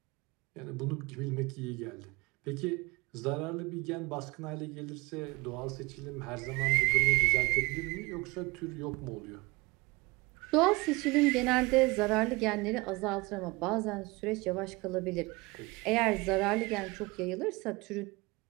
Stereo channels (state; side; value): quieter; left; 24.5 dB